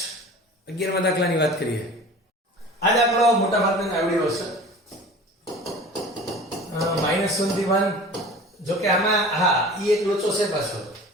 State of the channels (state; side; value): normal; both; correlation 0.40